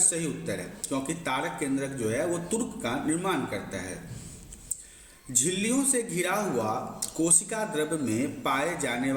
सही उत्तर है क्योंकि तारक केंद्रक जो है वो तुर्क का निर्माण करता है। झिल्लियों से घिरा हुआ कोशिका द्रव्य में पाए जाने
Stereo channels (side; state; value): both; identical; correlation 1.00